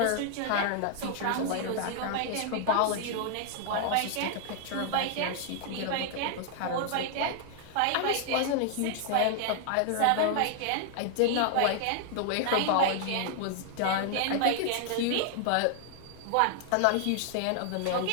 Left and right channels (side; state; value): both; different; correlation 0.00